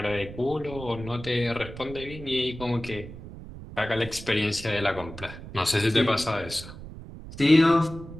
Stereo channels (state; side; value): noise; right; rumble, 13 dB below the sound